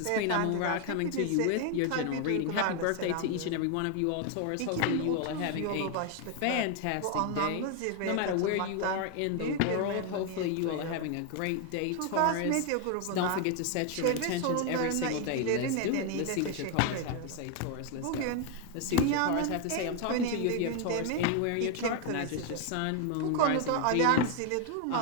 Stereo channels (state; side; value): different; both; correlation 0.01